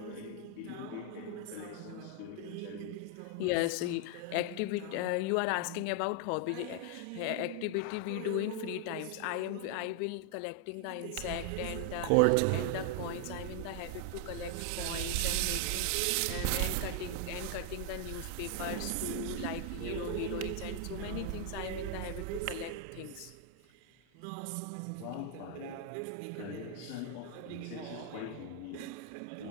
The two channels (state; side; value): different; both; correlation 0.00